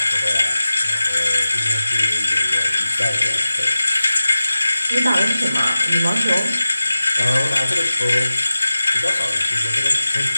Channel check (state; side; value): inverted; both; correlation -0.95